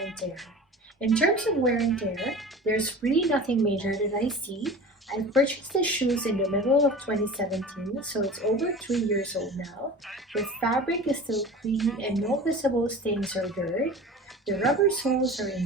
and tear. In terms of wear and tear, there's really nothing major that I see. I purchased the shoes in the middle of 2017, so it's over 3 years old now. The fabric is still clean and no visible stains or dirt. The rubber soles are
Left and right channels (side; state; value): both; normal; correlation 0.37